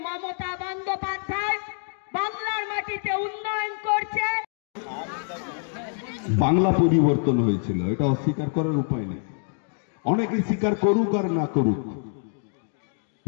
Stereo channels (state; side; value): silent; right; 61 dB below the other